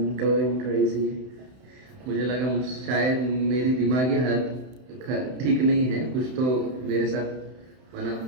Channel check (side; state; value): left; late; 31 ms